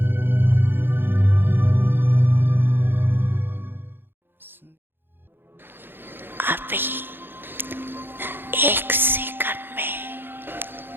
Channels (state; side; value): late; left; 0.10 ms